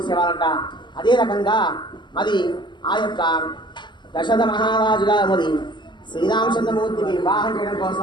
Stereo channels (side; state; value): right; late; 0.22 ms